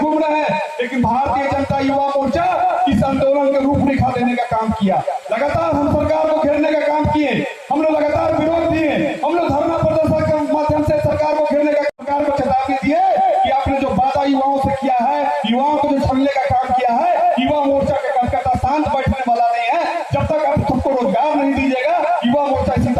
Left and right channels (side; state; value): both; identical; correlation 1.00